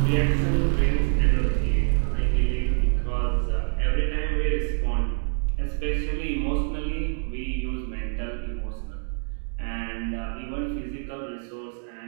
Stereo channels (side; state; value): left; silent; digital silence